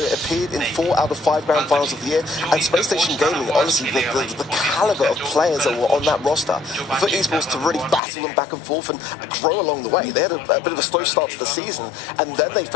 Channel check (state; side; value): drops out; right; at 8.0 s